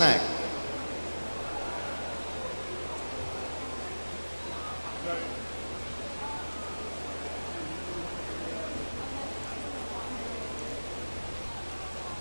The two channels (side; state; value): both; inverted; correlation -1.00